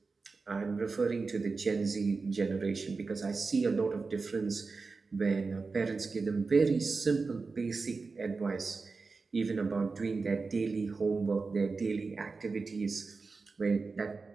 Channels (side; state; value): left; quieter; 4.3 dB